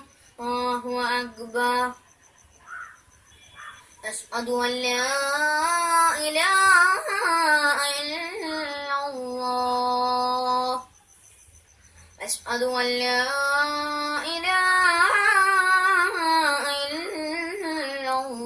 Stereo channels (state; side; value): identical; both; correlation 1.00